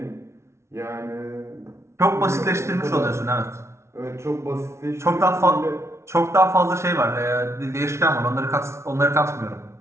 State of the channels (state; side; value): late; left; 0.13 ms